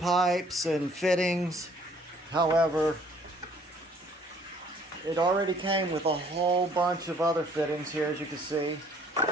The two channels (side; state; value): both; normal; correlation 0.59